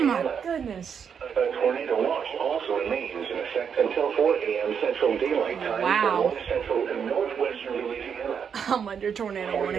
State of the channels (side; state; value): left; quieter; 7.2 dB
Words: my Louisiana. goodness. A tornado watch also remains in effect until 4 a.m. Central Daylight Time Wow. for north central and northwestern Louisiana. I'm under tornado